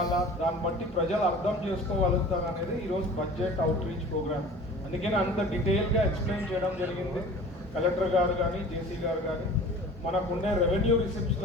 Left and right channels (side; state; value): both; normal; correlation 0.42